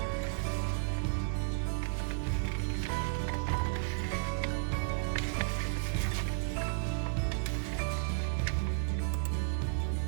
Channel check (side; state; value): left; silent; 56 dB below the other